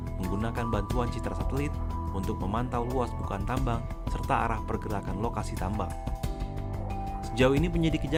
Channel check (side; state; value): both; identical; correlation 1.00